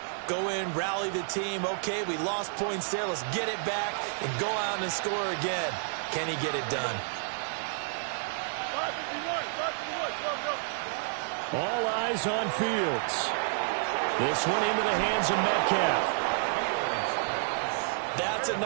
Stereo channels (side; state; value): left; silent; digital silence